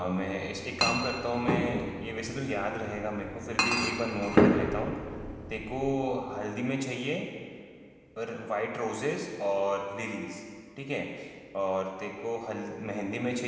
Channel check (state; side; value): identical; both; correlation 1.00